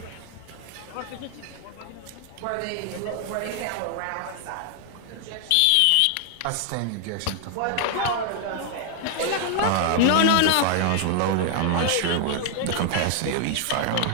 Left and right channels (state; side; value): different; both; correlation 0.00